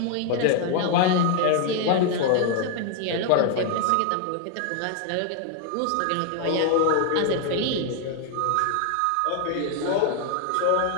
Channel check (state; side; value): different; both; correlation 0.00